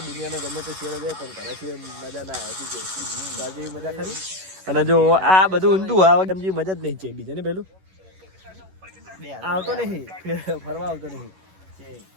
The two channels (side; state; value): left; late; 11 ms